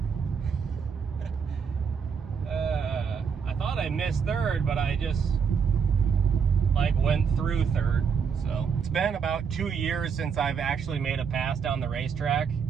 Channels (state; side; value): quieter; left; 6.4 dB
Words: I thought I missed third, but I just like went through third. So it's been about 2 years since I've actually made a pass down the racetrack,